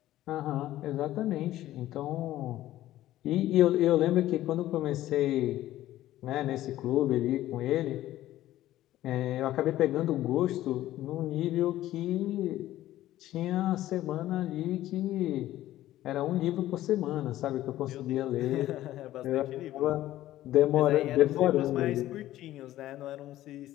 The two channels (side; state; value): right; quieter; 14.4 dB